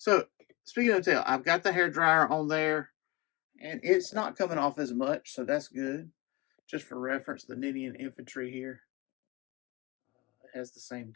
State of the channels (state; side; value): quieter; right; 22.6 dB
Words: speaking of tail, I've got the hair dryer on there, and it's not coming off as much, so that's good. Just for reference, the Ninian Infantry here has the same